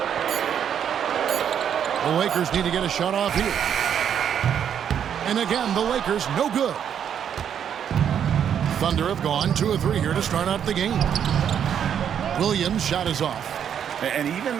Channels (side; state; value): left; quieter; 8.7 dB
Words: The Lakers need to get a shot off here. And again, the Lakers no good. Thunder have gone 2 or 3 here to start out the game. Williams' shot is off. And even